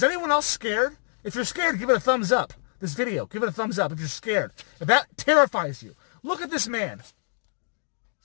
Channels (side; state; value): right; silent; digital silence